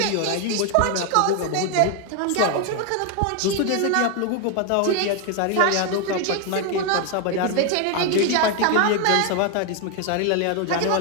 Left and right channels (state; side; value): different; both; correlation 0.01